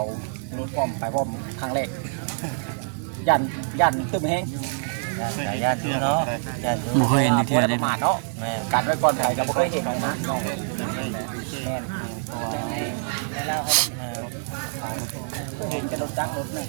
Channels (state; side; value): silent; left; digital silence